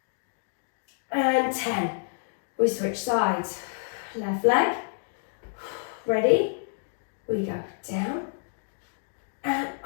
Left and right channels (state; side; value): silent; right; digital silence